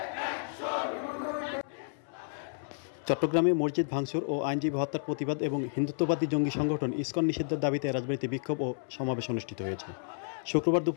চট্টগ্রামে মসজিদ ভাঙচুর ও আইনজীবী হত্যার প্রতিবাদ এবং হিন্দুত্ববাদী জঙ্গি সংগঠন ইসকন নিষিদ্ধের দাবিতে রাজবাড়ীতে বিক্ষোভ ও সমাবেশ অনুষ্ঠিত হয়েছে। শুক্রবার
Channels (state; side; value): silent; right; 57 dB below the other